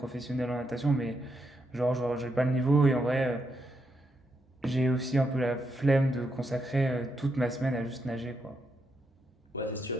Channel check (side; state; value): both; normal; correlation 0.81